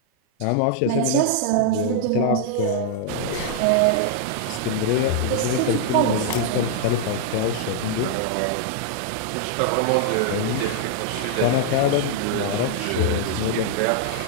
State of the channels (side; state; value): both; different; correlation -0.01